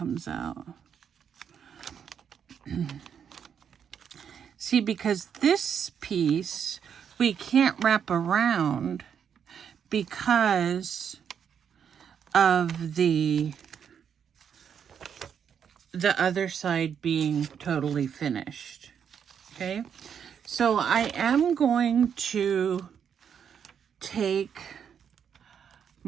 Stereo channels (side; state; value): left; quieter; 7.8 dB